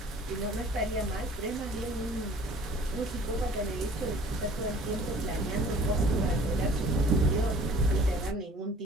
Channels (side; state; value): both; normal; correlation 0.50